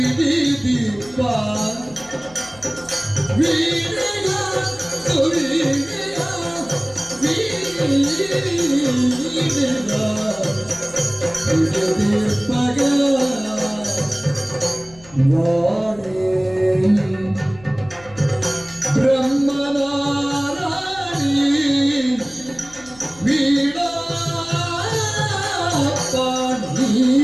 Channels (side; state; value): left; noise; hum, 23 dB below the sound